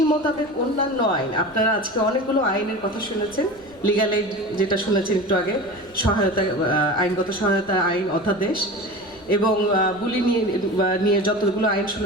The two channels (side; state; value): left; noise; rumble, 27 dB below the sound